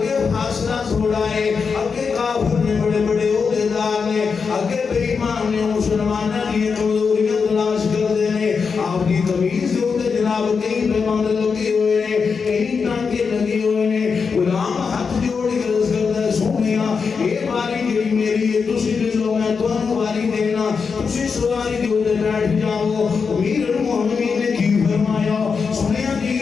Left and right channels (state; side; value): quieter; right; 5.5 dB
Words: فاصلہ تھوڑا ہے اگے کافر نے بڑے بڑے عہدیدار نے اگے بے ایمان نے مسلمانوں کی کمزوریاں تلاش کر دینے آپ کی تمیز سے ہوتے جناب کہیں پیماند لگے ہوئے نے کہیں ٹانکے لگے ہوئے نے غلام ہاتھ جوڑ کے عرض کرتا ہے سونیا یہ باری جڑی میری ہے تسی دے لو میں تمہیں باری دینا تسی سواری کے اوپر بیٹھ جاؤ امیر المومنین نے کی فرمایا سنیا جی